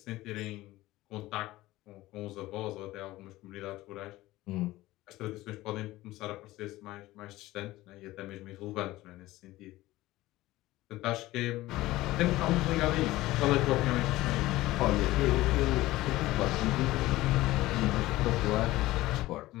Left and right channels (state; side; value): quieter; right; 17.5 dB